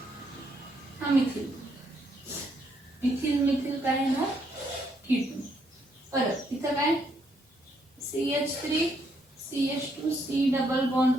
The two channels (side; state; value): both; normal; correlation 0.73